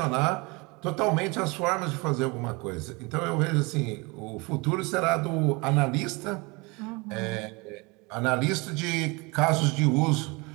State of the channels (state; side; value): quieter; left; 26.7 dB